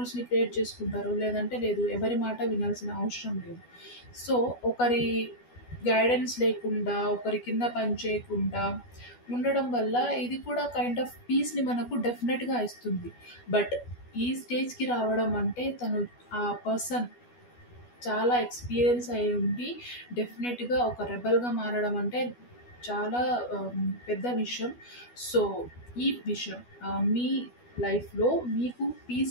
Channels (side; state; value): right; late; 12 ms